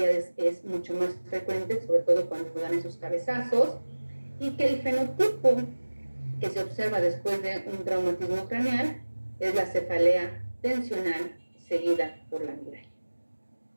es mucho más frecuente, sobre todo cuando dan esos cabezazos, y que el fenotipo que se observa después de un traumatismo craneal es la cefalea tensional seguida por la migraña.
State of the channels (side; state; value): both; inverted; correlation -1.00